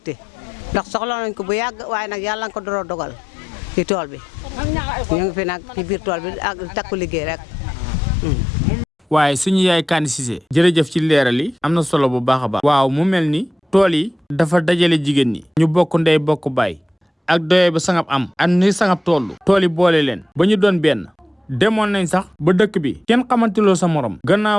ndax soxla nañ ko bu yàgg waaye nag yàlla nga ko door a dogal ci tool bi ñu ngi fi nag ci biir tool bi ak takku liggéey rek. waaye suñu yaay Kani Cissé jërëjëf ci leeral yi am na solo bu baax a baax. waaw mu mel ni tool yi dafa dajale jigéen ñi ñu bokk ndey bokk baay ak doye ba Sangap am ak ni Sangap tool yi boole leen ba ñu doon benn demoon nañ sax ba dëkk bi kenn xamantiloo sa morom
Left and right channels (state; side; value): normal; both; correlation 0.89